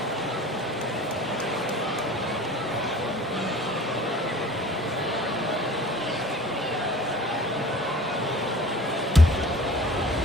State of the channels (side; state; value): both; normal; correlation 0.44